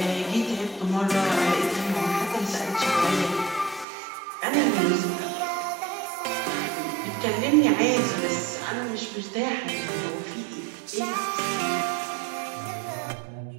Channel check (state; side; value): drops out; left; at 3.9 s